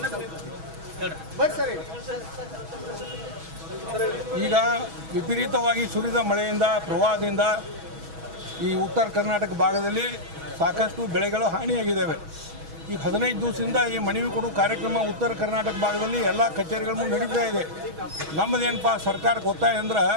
ಈಗ ವಿಪರೀತವಾಗಿ ಸುರಿದ ಮಳೆಯಿಂದ ಪ್ರವಾಹದಿಂದ ಈ ಉತ್ತರ ಕರ್ನಾಟಕ ಭಾಗದಲ್ಲಿ ಸಾಕಷ್ಟು ಬೆಳೆಗಳು ಹಾನಿಯಾಗಿದ್ದಾವೆ। ಈಗ 15 ದಿವಸದಿಂದ ಈ ಮನವಿ ಕೊಡು ಕಾರ್ಯಕ್ರಮ ಉತ್ತರ ಕರ್ನಾಟಕ ಭಾಗದಲ್ಲಿ ಎಲ್ಲ ಕಚೇರಿಗಳ ಮುಂದೆ ನಡೀತಾ ಇದೆ। ನಮ್ಮದೇನಪ್ಪ ಸರ್ಕಾರಕ್ಕೆ ಒತ್ತಾಯ ಅಂದ್ರೆ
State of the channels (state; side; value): late; left; 6.2 ms